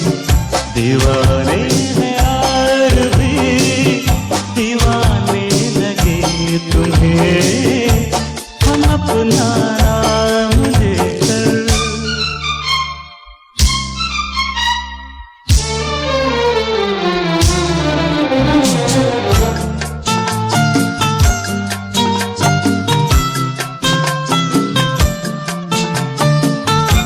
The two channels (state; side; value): identical; both; correlation 1.00